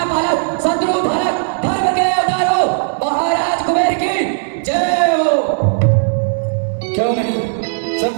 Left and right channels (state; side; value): silent; left; digital silence